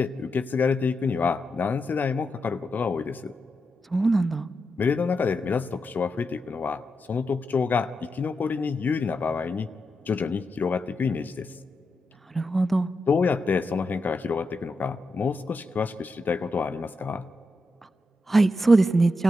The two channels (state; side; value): normal; both; correlation 0.86